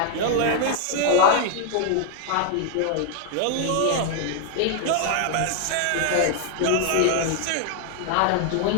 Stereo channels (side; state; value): both; different; correlation 0.00